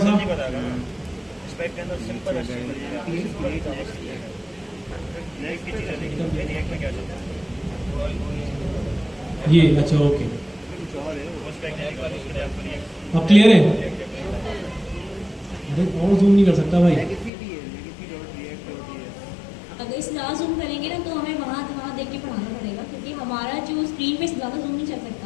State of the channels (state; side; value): drops out; right; at 17.3 s